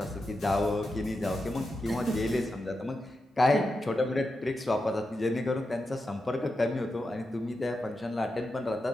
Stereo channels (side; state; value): both; normal; correlation 0.88